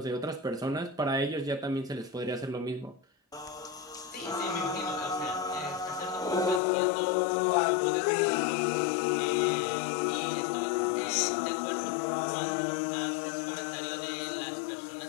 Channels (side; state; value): right; drops out; at 6.6 s